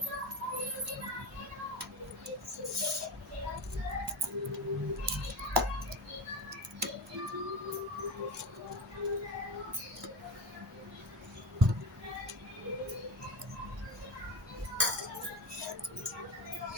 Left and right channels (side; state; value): both; normal; correlation 0.24